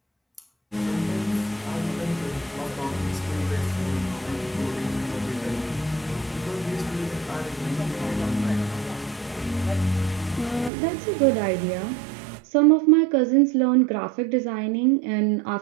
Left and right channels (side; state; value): left; drops out; at 10.7 s